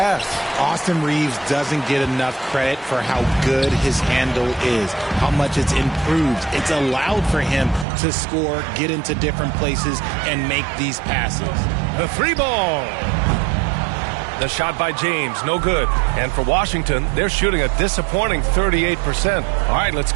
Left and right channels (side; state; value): left; drops out; at 7.9 s